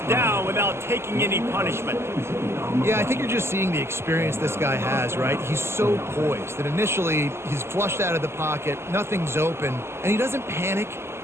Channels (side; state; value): left; late; 0.12 ms